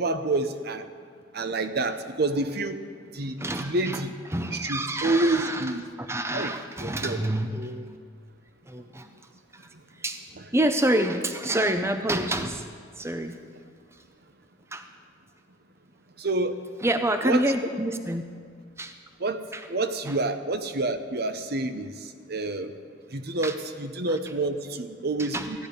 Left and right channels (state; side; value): normal; both; correlation 0.37